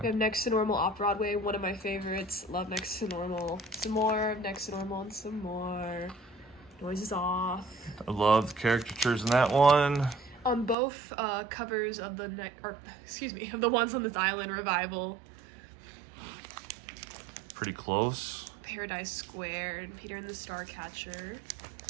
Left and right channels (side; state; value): left; drops out; at 10.8 s